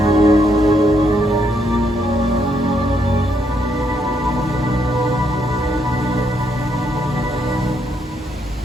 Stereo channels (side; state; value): both; normal; correlation 0.76